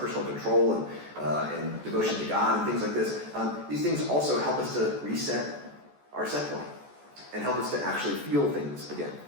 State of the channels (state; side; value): late; left; 14 ms